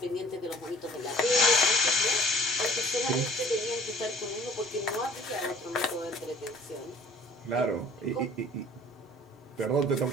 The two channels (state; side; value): normal; both; correlation 0.51